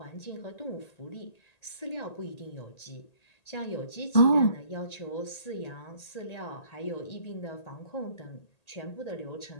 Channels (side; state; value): right; late; 1.8 ms